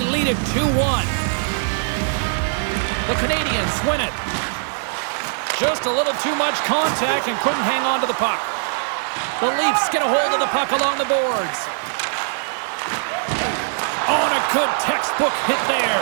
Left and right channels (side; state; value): left; silent; digital silence